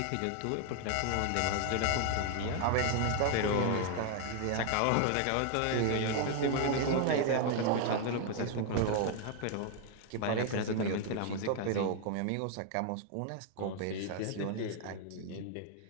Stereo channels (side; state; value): both; different; correlation 0.00